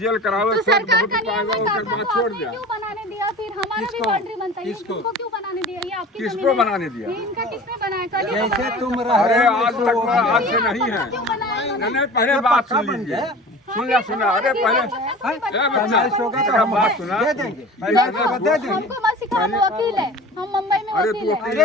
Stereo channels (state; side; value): normal; both; correlation 0.38